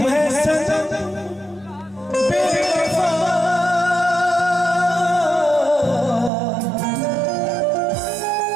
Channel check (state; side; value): drops out; left; at 6.3 s